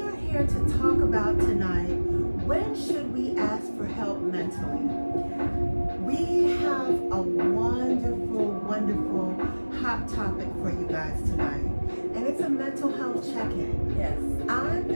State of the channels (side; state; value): both; inverted; correlation -1.00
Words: are here to talk about tonight, when should we ask for help mentally? We have a wonderful, wonderful hot topic for you guys tonight. And it's a mental health check-in. Yes. I'm